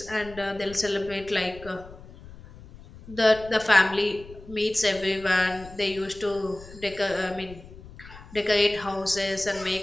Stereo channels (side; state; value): left; noise; rumble, 18 dB below the sound